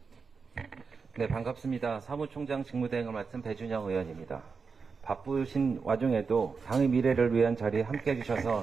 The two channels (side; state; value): left; quieter; 5.1 dB